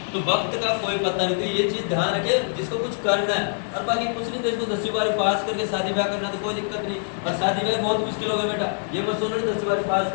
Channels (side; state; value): right; silent; digital silence